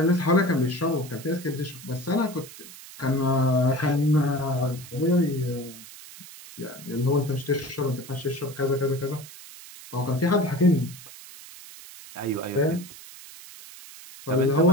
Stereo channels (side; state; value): right; noise; hiss, 16 dB below the sound